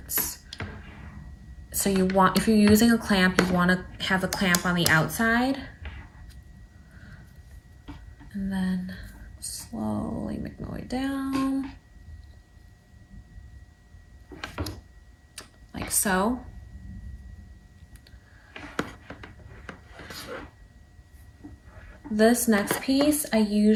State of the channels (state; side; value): identical; both; correlation 1.00